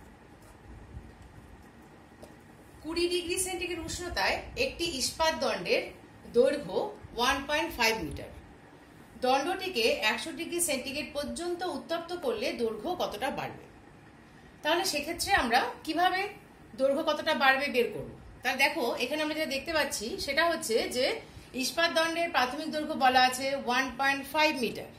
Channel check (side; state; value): both; identical; correlation 1.00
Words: 20 ডিগ্রি সেন্টিগ্রেড উষ্ণতায় একটি ইস্পাত দণ্ডের দৈর্ঘ্য 1.5 মিটার। দণ্ডটিকে 100 ডিগ্রি সেন্টিগ্রেড পর্যন্ত উত্তপ্ত করলে দৈর্ঘ্য কতটা বাড়বে? তাহলে সেক্ষেত্রে আমরা কিভাবে দৈর্ঘ্য কতটা বাড়বে বের করব? তাহলে দেখো এখানে আমরা যেটা দেখতে পাচ্ছি সেটা হচ্ছে যে ইস্পাত দণ্ডের প্রাথমিক দৈর্ঘ্য বলা আছে 1.5 মিটার,